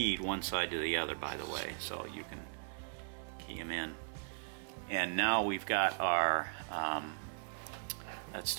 one side to the other, by the way, so you can key them in. And now we've got our that's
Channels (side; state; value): left; silent; digital silence